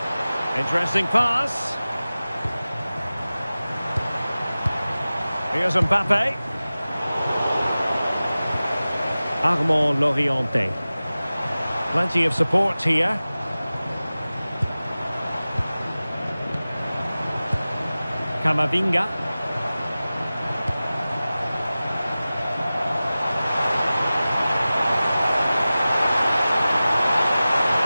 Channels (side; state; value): both; inverted; correlation -0.97